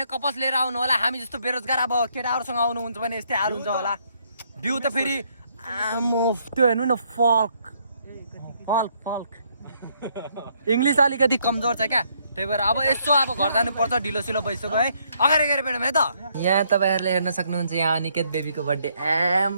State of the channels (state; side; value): inverted; both; correlation -0.71